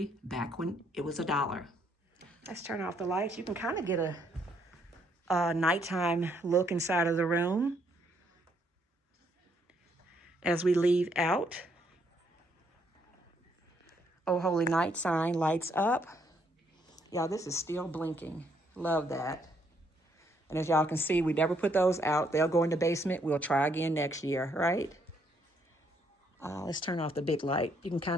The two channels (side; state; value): both; normal; correlation 0.71